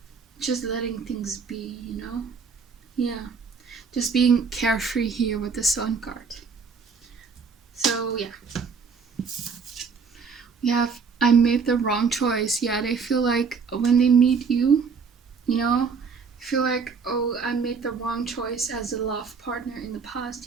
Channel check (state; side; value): quieter; left; 5.4 dB